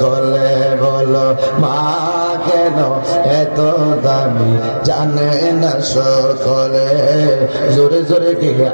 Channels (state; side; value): inverted; both; correlation -1.00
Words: বলো মা কেন এত দামি জানে না সকলে জোরে জোরে কি